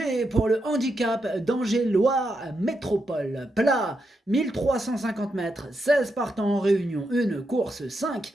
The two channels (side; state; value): both; normal; correlation 0.84